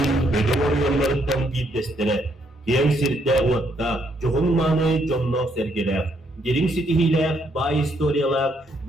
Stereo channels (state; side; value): normal; both; correlation 0.72